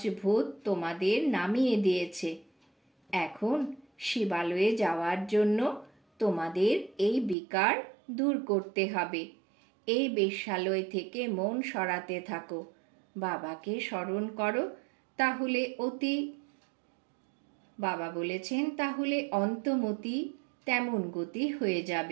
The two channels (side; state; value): left; drops out; at 7.4 s